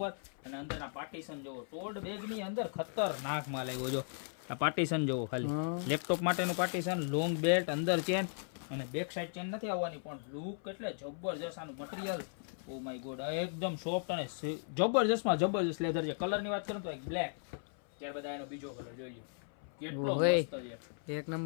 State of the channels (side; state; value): right; silent; 53 dB below the other